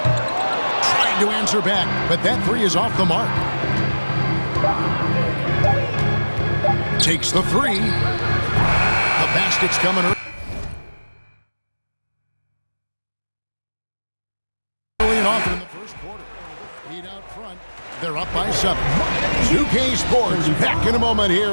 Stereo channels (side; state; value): both; inverted; correlation -1.00